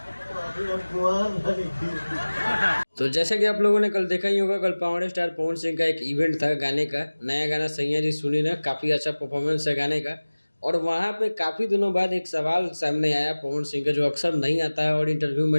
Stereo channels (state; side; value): inverted; both; correlation -1.00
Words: तो जैसे कि आप लोगों ने कल देखा ही होगा, कल पावर स्टार पवन सिंह का एक इवेंट था गाने का। नया गाना सैया जी सुनी ना, काफ़ी अच्छा परफॉर्मेंस है गाने का। और वहाँ पे काफ़ी दिनों बाद एक सवाल सामने आया पवन सिंह का, जो अक्सर नहीं आता है और इंटरव्यू